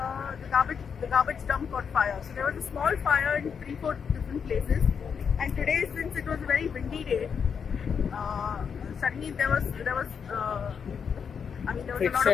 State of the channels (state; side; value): quieter; right; 6.7 dB